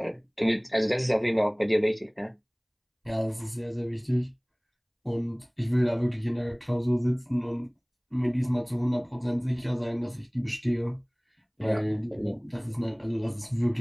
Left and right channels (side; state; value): both; identical; correlation 1.00